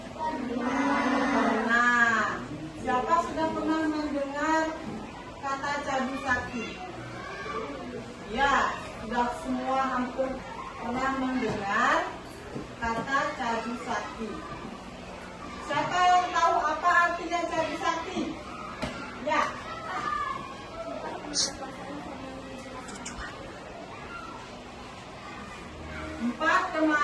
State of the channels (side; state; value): both; identical; correlation 1.00